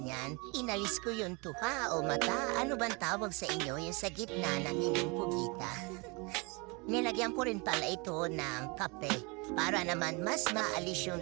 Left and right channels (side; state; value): left; quieter; 29.4 dB